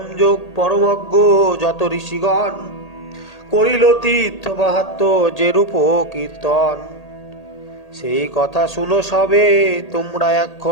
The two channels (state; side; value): late; right; 1.8 ms